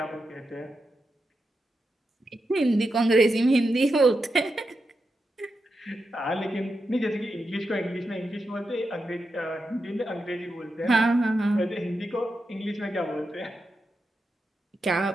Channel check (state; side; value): normal; both; correlation 0.87